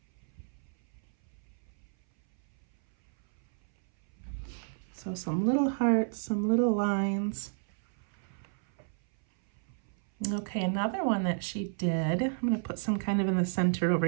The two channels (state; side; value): silent; left; 57 dB below the other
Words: So some little hearts, some little lines. Okay, another one that she did, I'm going to put some kind of in the center over